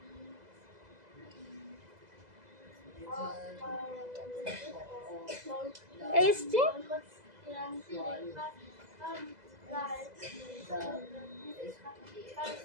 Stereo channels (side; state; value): left; late; 2.0 ms